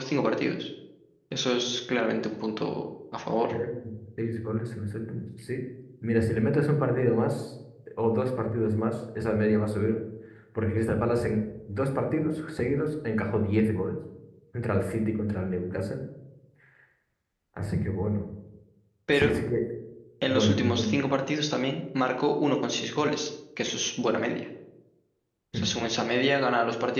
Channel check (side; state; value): both; identical; correlation 1.00